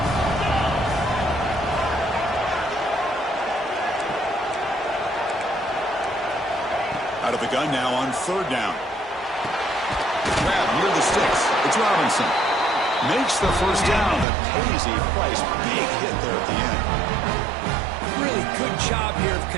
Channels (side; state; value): left; drops out; at 14.2 s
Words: Out of the gun now on 3rd down. Grab near the sticks. It's Robinson. Makes the first down, but pays a price. Big hit there at the end. Really good job here of